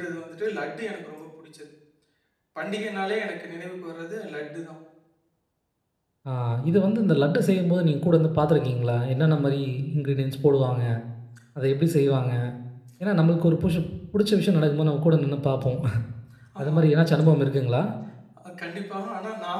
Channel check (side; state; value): both; identical; correlation 1.00